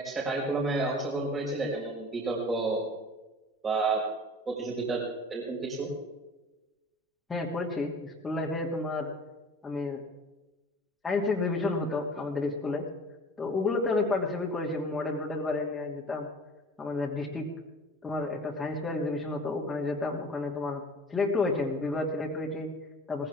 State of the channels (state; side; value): normal; both; correlation 0.43